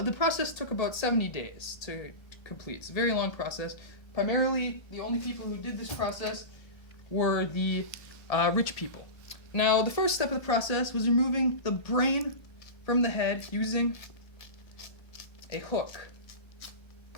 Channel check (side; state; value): right; late; 1.3 ms